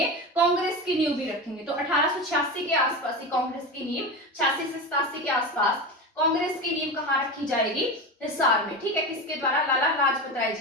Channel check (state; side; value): normal; both; correlation 0.23